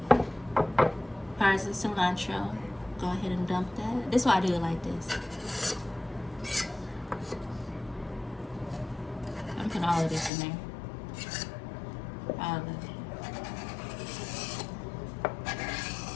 parsley, cilantro. Go ahead and dump that. This is why I do it like this. I'm putting all of this in there. All of it.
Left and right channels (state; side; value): drops out; right; at 10.3 s